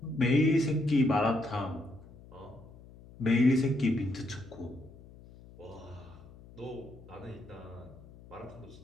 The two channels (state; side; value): noise; left; hum, 20 dB below the sound